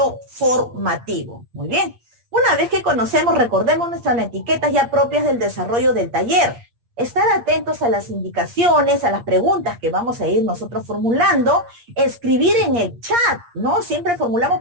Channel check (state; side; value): late; left; 8.5 ms